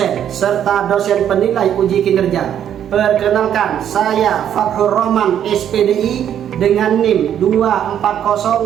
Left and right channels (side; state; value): left; quieter; 9.8 dB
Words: serta dosen penilai uji kinerja, perkenalkan saya Fathur Rahman SPDI dengan NIM